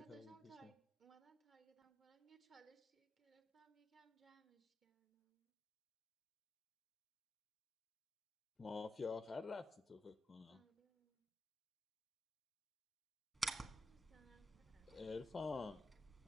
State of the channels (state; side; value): normal; both; correlation 0.89